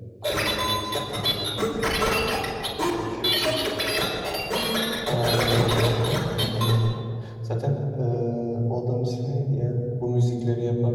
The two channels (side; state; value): both; identical; correlation 1.00